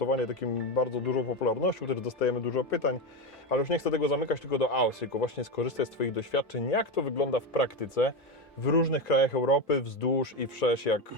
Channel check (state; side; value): normal; both; correlation 0.15